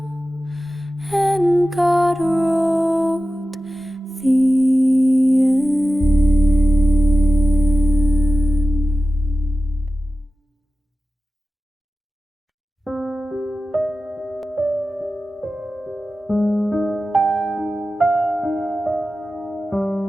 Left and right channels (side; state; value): both; normal; correlation 0.94